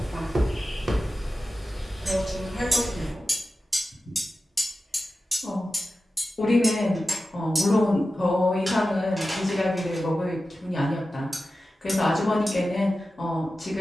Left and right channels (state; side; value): normal; both; correlation 0.93